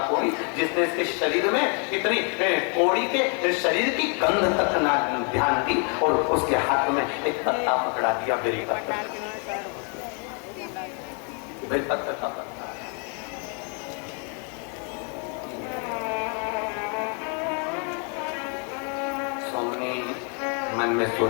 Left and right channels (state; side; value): quieter; right; 38.0 dB